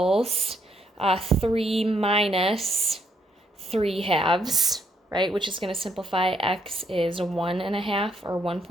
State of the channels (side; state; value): both; normal; correlation 0.73